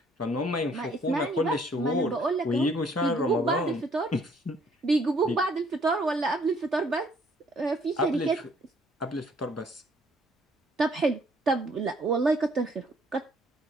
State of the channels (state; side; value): normal; both; correlation 0.62